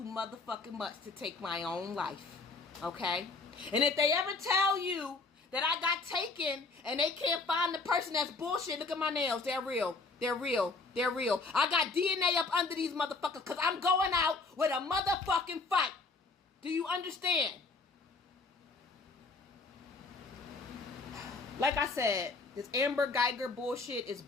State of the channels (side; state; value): right; quieter; 3.8 dB